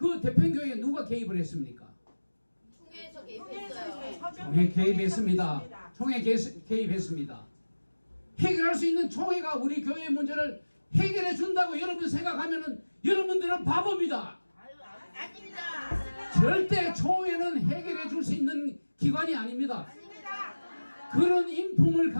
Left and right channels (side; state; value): both; inverted; correlation -1.00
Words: 대평교회에 누가 개입을 했습니까? 총회에서 개입했어요. 총회 개입했습니다. 총회 개입했습니다. 해결할 수 있는 총회가 우리 교회의 문제를 해결해 준다고 여러분 생각하면은 여러분들은 바보입니다. 아닙니다. 절대 총회는 해결해 줄 수 있는 기관이 아닙니다. 그런 인품을